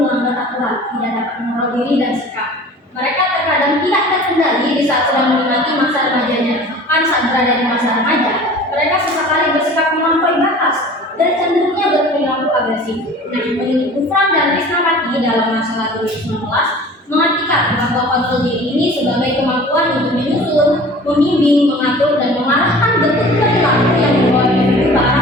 aturan, tidak dapat mengontrol diri dan sikap. Mereka terkadang tidak terkendali di saat sedang menikmati masa remajanya. Bahkan saat berada di masa remaja, mereka sesekali bersikap melampaui batas dan cenderungnya berperilaku agresif. Nah, peneliti Gufran dan Risnawati dalam masalah 2019 mengartikan bahwa kontrol diri ini sebagai kemampuan untuk menyusun, membimbing, mengatur, dan mengarahkan bentuk perilaku yang membawa individu ke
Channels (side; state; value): both; normal; correlation 0.43